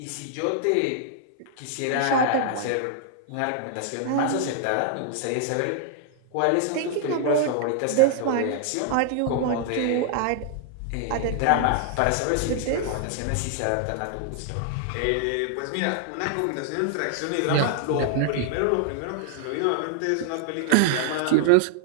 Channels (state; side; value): different; both; correlation 0.00